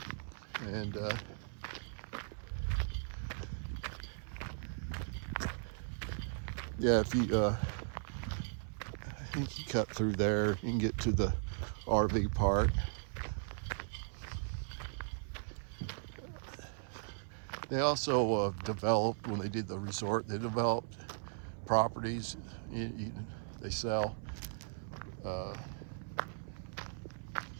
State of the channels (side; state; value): left; silent; 53 dB below the other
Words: and yeah, if you I think you cut through there, you can get to the RV park. They also developed, when they did the resort, they developed properties they sell.